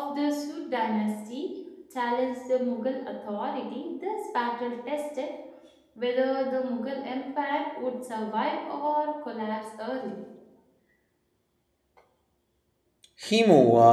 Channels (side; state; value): both; identical; correlation 1.00